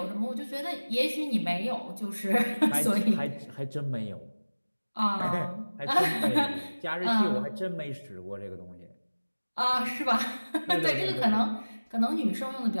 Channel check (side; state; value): both; inverted; correlation -1.00